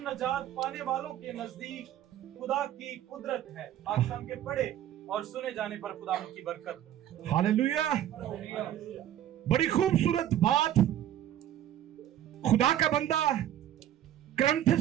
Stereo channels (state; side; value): quieter; left; 11.5 dB